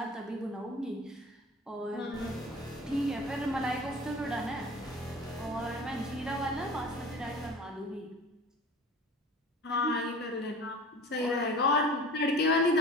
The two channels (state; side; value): normal; both; correlation 0.40